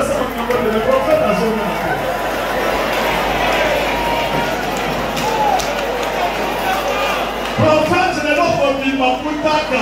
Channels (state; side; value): identical; both; correlation 1.00